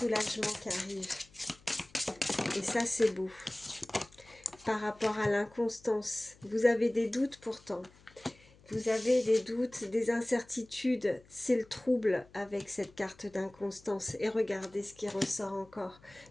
qui arrive. Et ça, c'est beau. Par rapport à l'inconstance, vous avez des doutes pourtant. Vous avez des doutes, des incertitudes. C'est le trouble avec cette carte d'inconstance. Et regardez ce qui ressort encore.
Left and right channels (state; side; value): noise; left; hum, 26 dB below the sound